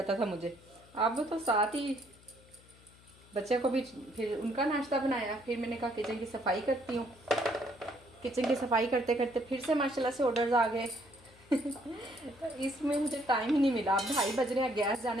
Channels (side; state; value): left; noise; hum, 25 dB below the sound